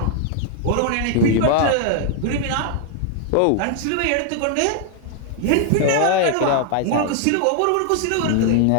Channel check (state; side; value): different; both; correlation 0.00